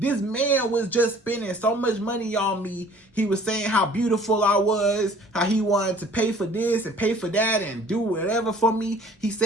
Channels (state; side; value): normal; both; correlation 0.52